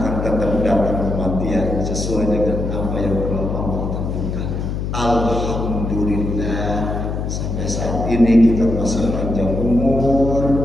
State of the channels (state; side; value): noise; left; hum, 3 dB below the sound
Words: tetap datang kematian sesuai dengan apa yang telah Allah tentukan. Alhamdulillah, sampai saat ini kita masih panjang umur,